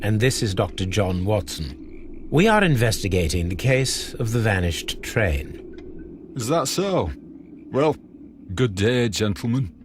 and this is Dr. John Watson. We are investigating the case of the vanished train. Is that so? Well, good day, gentlemen.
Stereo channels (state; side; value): identical; both; correlation 1.00